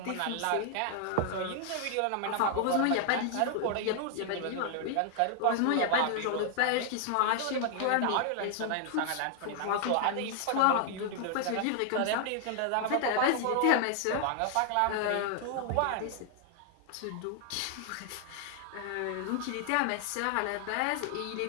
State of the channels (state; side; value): different; both; correlation 0.00